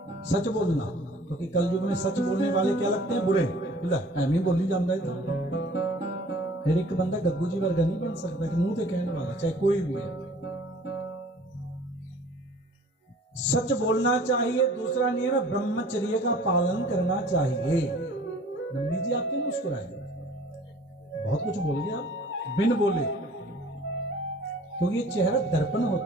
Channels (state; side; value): normal; both; correlation 0.50